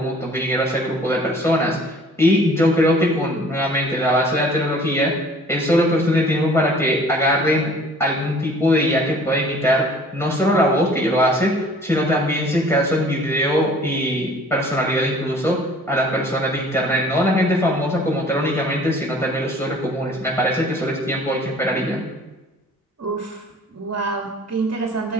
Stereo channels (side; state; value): both; normal; correlation 0.51